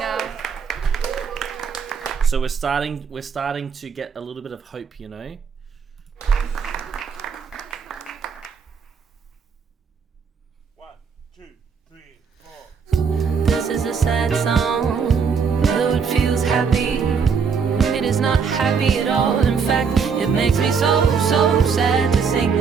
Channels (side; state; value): left; quieter; 6.0 dB